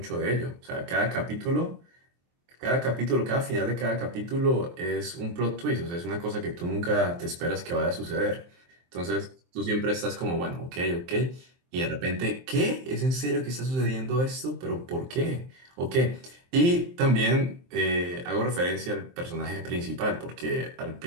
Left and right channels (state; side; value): late; left; 23 ms